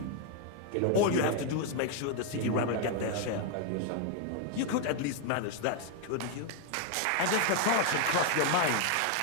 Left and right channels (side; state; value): both; different; correlation 0.00